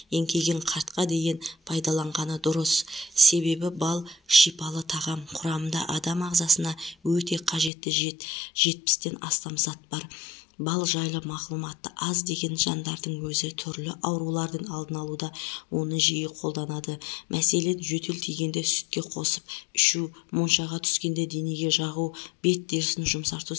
еңкейген қартқа дейін пайдаланғаны дұрыс. Себебі бал шипалы тағам. Құрамында адам ағзасына өте қажетті 70-тен астам зат бар. Бал жайлы мағлұматы аз деген жандардың өзі түрлі аурулардың алдын алуда оны жиі қолданады. Мәселен, жөтел тигенде сүтке қосып ішу, моншаға түскенде денеге жағу, бет терісін жұмсарту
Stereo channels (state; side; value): drops out; right; at 7.7 s